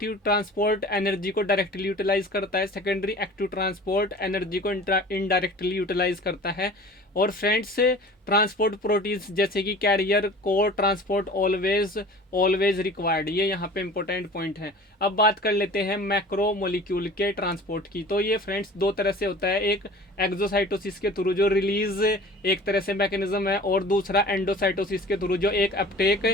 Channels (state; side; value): normal; both; correlation 0.43